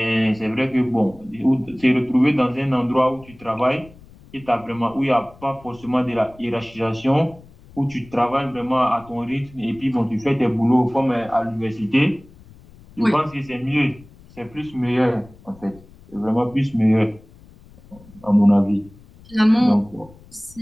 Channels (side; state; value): left; noise; rumble, 23 dB below the sound